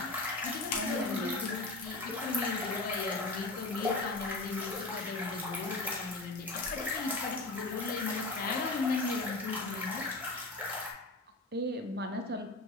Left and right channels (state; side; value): quieter; right; 3.0 dB